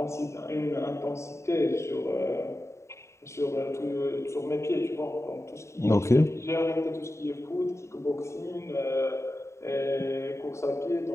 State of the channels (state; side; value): late; right; 0.14 ms